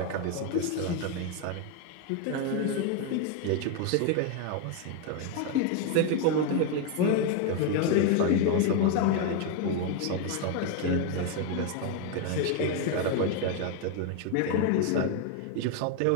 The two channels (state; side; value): different; both; correlation 0.01